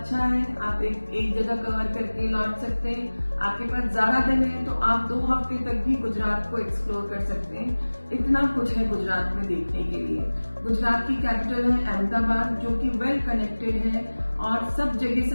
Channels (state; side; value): inverted; both; correlation -1.00